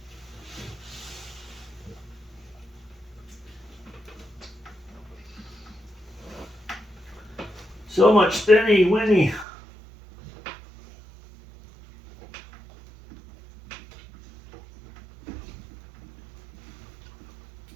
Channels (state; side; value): drops out; left; at 9.5 s